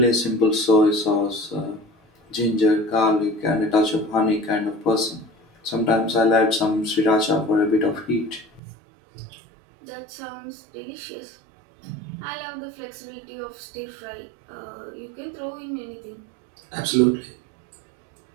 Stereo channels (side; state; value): left; drops out; at 8.6 s